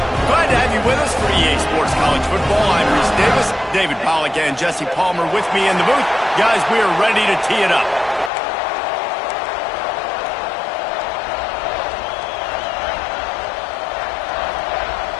Glad to have you with us for EA Sports College Football. I'm Reese Davis, David Pollack, and Jesse Palmer with me in the booth. Guys, we are ready to tee it up.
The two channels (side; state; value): right; drops out; at 8.3 s